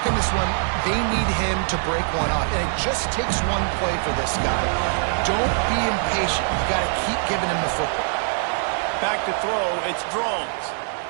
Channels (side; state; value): left; silent; 60 dB below the other